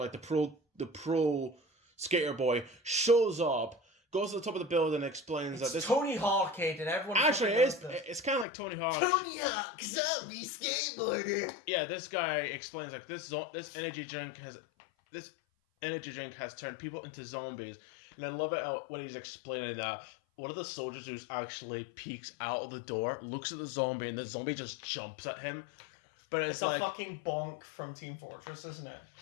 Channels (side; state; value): right; drops out; at 8.5 s